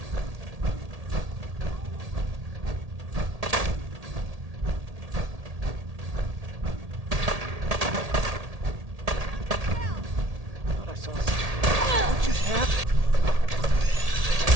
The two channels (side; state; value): left; late; 1.8 ms